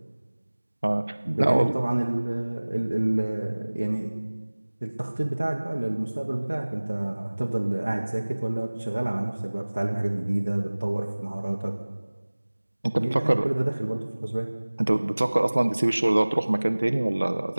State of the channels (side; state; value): both; inverted; correlation -1.00